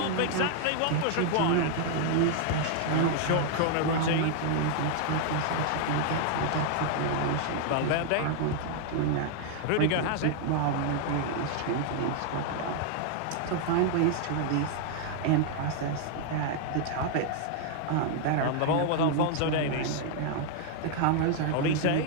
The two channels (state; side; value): different; both; correlation 0.00